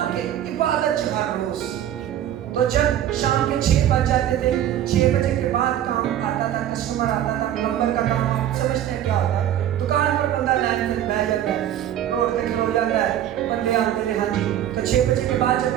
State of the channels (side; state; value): left; quieter; 11.3 dB